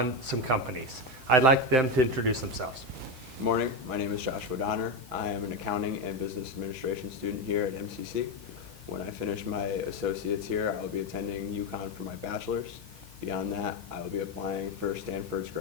some companies. I'd like them to introduce themselves. Good morning. My name is Joshua Donner. I am an accounting and business administration student here at MCC. When I finish my associates here, I will be attending UConn for my bachelor's. Beyond that, I will be applying for Stanford's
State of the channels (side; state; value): right; noise; hiss, 23 dB below the sound